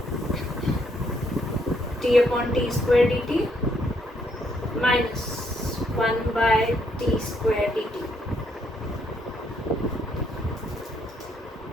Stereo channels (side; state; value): both; normal; correlation 0.72